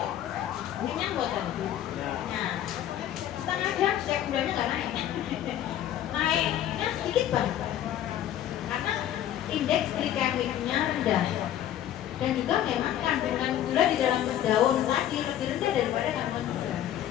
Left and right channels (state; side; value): quieter; right; 11.6 dB